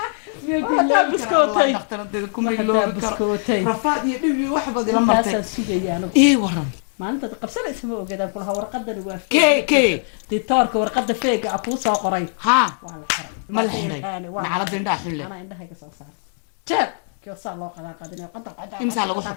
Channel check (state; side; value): silent; right; digital silence